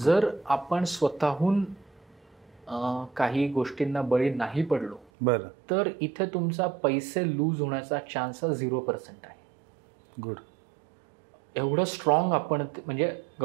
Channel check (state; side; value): drops out; left; at 5.1 s